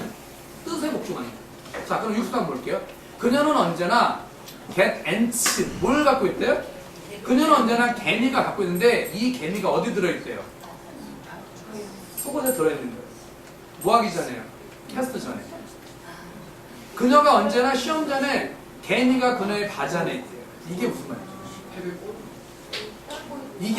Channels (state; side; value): identical; both; correlation 1.00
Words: 뜻에 복종하는 거예요. 자, 그럼 60번 볼게요. 그녀는 언제나 get ants, 뭘 갖고 있대요? 그녀는 언제나 개미가 갖고 있는데 이 개미가 어디 들어있대요? 속옷에 들어있는 거예요. 뭐 하기 전에요? 테스트 전에. 그녀가 언제나 시험 전에 개미가 그녀의 바지안에 있대요. 이게 무슨 말이에요?